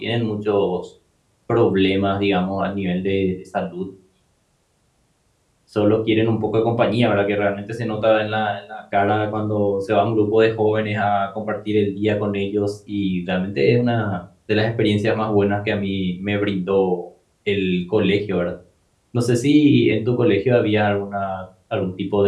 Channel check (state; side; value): identical; both; correlation 1.00